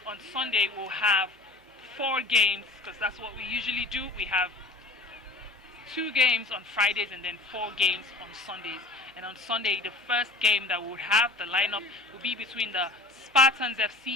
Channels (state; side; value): quieter; right; 3.1 dB